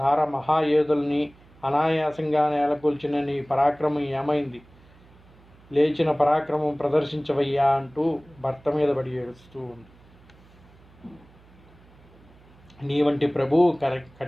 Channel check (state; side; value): noise; right; hum, 26 dB below the sound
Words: మహాయోధుల్ని అనాయాసంగా నేలకూల్చిన నీ పరాక్రమం ఏమైంది? లేచిన పరాక్రమం ప్రదర్శించవయ్యా అంటూ భర్త మీద పడి ఏడుస్తూ ఉంది. నీ వంటి ప్రభువు